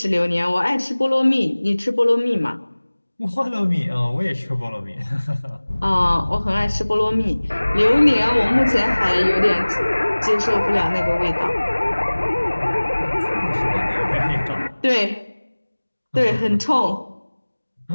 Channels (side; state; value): both; inverted; correlation -1.00